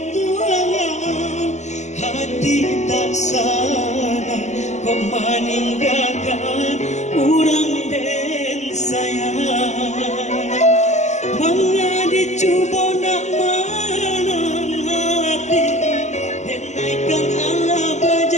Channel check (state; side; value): late; right; 0.33 ms